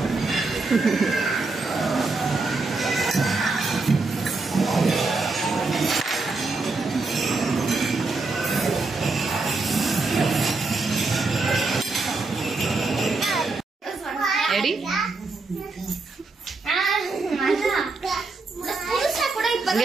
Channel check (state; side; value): quieter; left; 3.7 dB